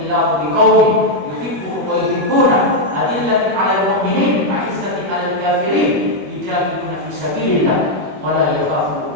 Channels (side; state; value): left; late; 21 ms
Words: biqaumin yuhibbuhum wa yuhibbunah adillatin 'alal mu'minin 'izzatin 'alal kafirin yujahiduna fi sabilillah wa la yakhafu